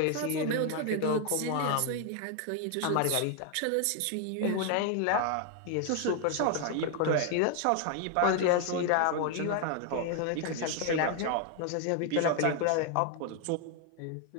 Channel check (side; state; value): both; different; correlation 0.01